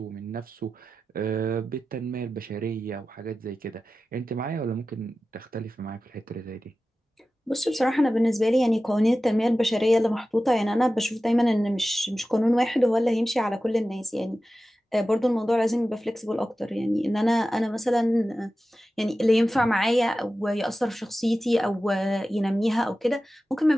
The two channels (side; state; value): both; normal; correlation 0.94